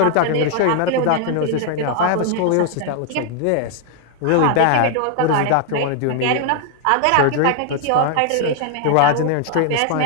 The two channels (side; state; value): both; different; correlation 0.00